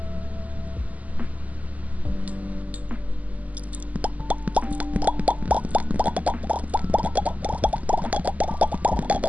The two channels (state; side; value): late; left; 0.074 ms